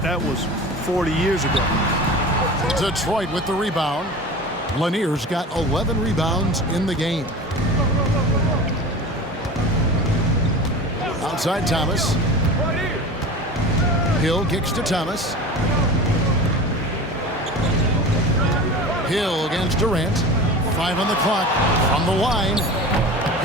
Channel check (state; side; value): normal; both; correlation 0.34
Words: that was 40 years ago. Detroit with the rebound. Lanier's got 11 rebounds in the game. Outside Thomas. Hill kicks to Thomas. Hill against Durant. 5 on the clock. From the line.